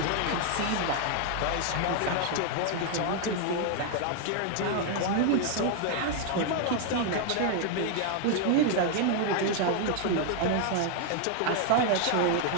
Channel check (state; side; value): different; both; correlation 0.00